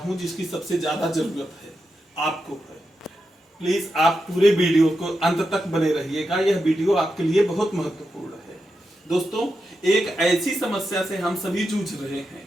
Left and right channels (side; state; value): both; normal; correlation 0.87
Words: जिसकी सबसे ज्यादा जरूरत है, आपको है। प्लीज आप पूरे वीडियो को अंत तक बने रहिएगा, यह वीडियो आपके लिए बहुत महत्वपूर्ण है। दोस्तों, एक ऐसी समस्या से हम सभी जूझ रहे हैं,